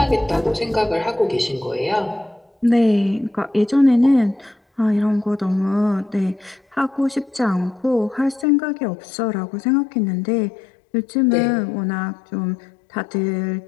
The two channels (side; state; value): right; drops out; at 8.5 s